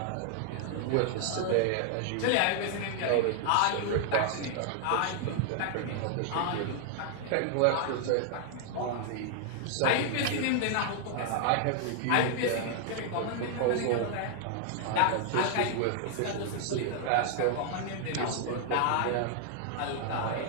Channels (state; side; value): different; both; correlation 0.00